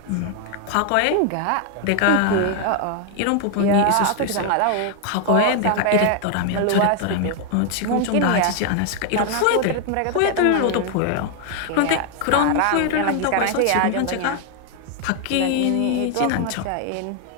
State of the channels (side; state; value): both; different; correlation 0.00